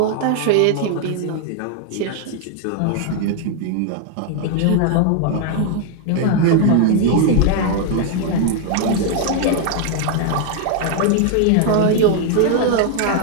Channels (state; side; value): different; both; correlation 0.00